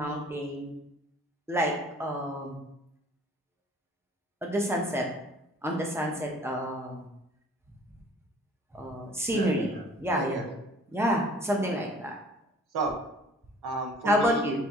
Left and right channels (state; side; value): normal; both; correlation 0.52